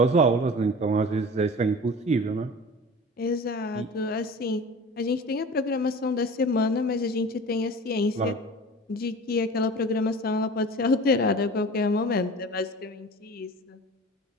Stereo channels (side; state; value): both; normal; correlation 0.38